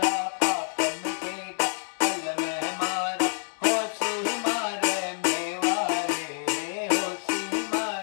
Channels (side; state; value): right; silent; 59 dB below the other